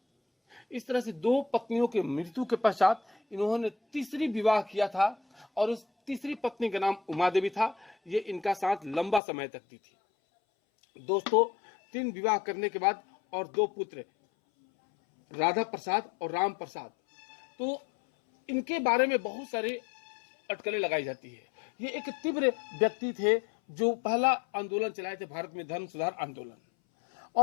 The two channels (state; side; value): drops out; right; at 9.2 s